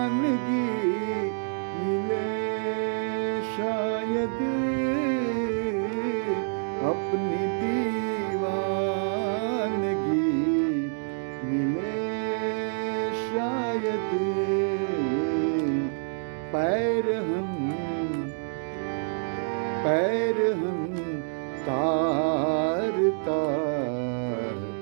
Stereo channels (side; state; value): left; silent; digital silence